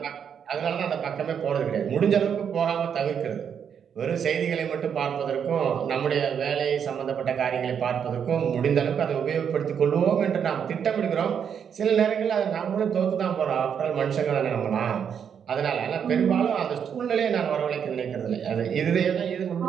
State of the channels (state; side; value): quieter; left; 7.7 dB